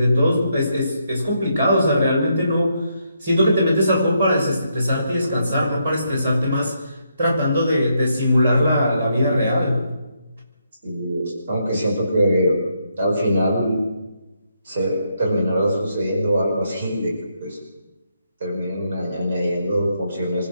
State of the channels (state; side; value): inverted; both; correlation -0.78